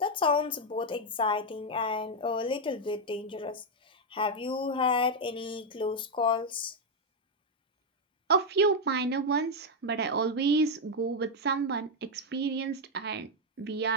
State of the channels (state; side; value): normal; both; correlation 0.03